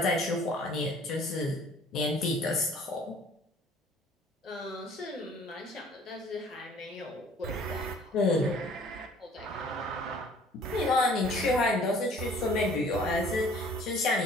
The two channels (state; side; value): normal; both; correlation 0.53